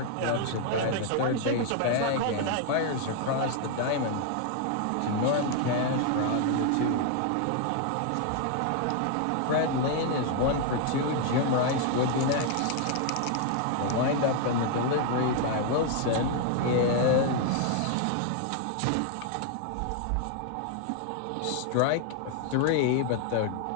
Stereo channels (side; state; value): both; different; correlation 0.00